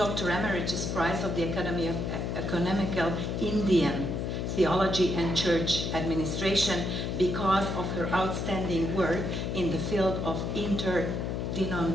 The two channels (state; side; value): noise; left; hum, 2 dB below the sound